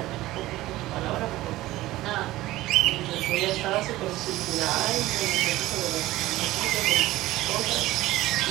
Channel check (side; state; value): left; quieter; 17.0 dB